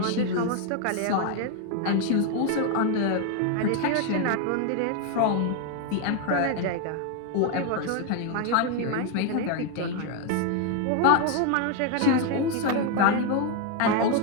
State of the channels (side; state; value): both; different; correlation 0.01